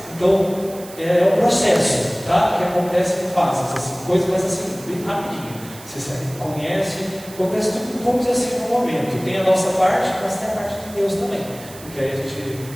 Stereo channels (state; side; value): noise; right; hiss, 17 dB below the sound